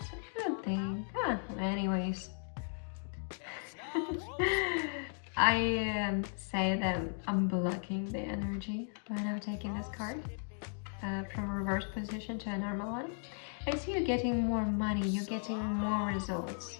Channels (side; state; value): right; silent; 54 dB below the other